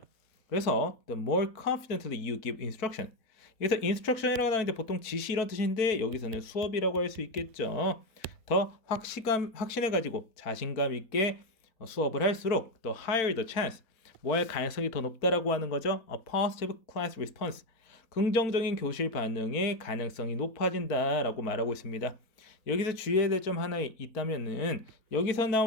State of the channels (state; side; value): late; right; 4.2 ms